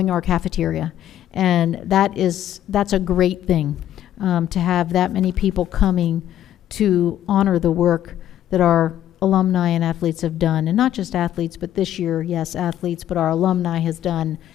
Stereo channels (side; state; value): right; quieter; 11.7 dB